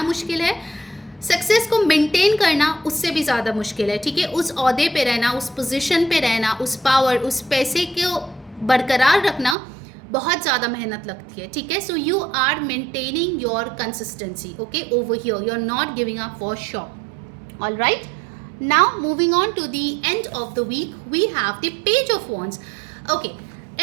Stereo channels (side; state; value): left; drops out; at 9.6 s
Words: मुश्किल है, सक्सेस को मेंटेन करना उससे भी ज़्यादा मुश्किल है, ठीक है. उस ओहदे पे रहना, उस पोजीशन पे रहना, उस पावर, उस पैसे को बरकरार रखना बहुत ज़्यादा मेहनत लगती है, ठीक है. So you are maintaining your consistency, okay, over here. You are not giving up for sure. All right, now moving on to the end of the week, we have the page of wands. Okay,